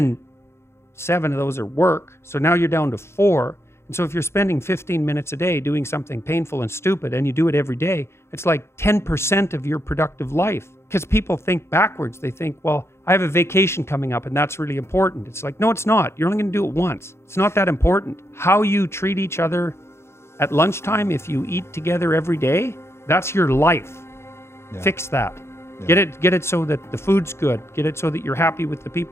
7 of those are work. So now you're down to 4. And so if you're spending 15 minutes a day doing something painful and stupid, and you do it every day, it's like 10% of your productive life. Because people think backwards. They think, well, I have a vacation coming up and that's really important. It's like, no, it's not. You're only going to do it once. It's not that important. How you treat each other at lunchtime, if you eat together every day, that's your life. Yeah. Fix that. Yeah. Get it so that the food's good. Get it so that you're happy with the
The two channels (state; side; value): late; right; 0.13 ms